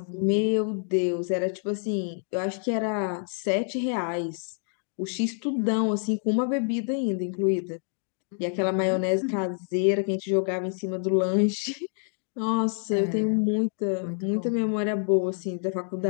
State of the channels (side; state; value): right; silent; 60 dB below the other